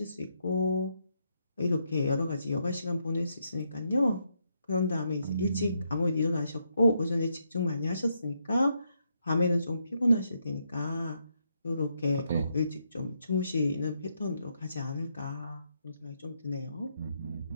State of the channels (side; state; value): both; inverted; correlation -0.78